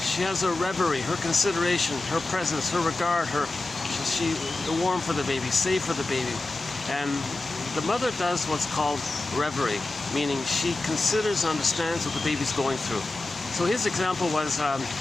She has her reverie, her consideration, her presence, her regard, she's warm for the baby, safe for the baby. And the mother does what's called reverie, meaning she considers and understands what the baby's going through. So his example was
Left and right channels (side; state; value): right; quieter; 3.1 dB